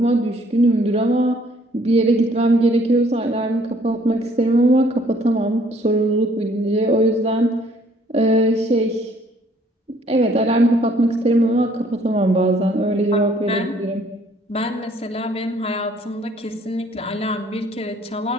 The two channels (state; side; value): normal; both; correlation 0.61